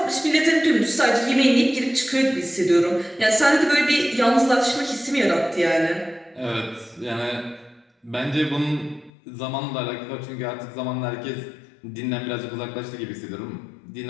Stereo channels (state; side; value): drops out; right; at 9.1 s